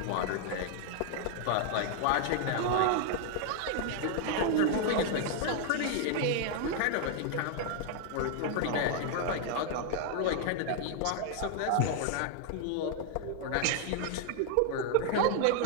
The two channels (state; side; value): different; both; correlation 0.00